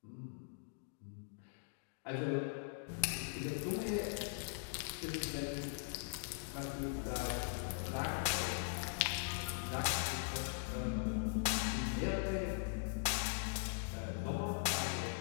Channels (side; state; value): right; silent; digital silence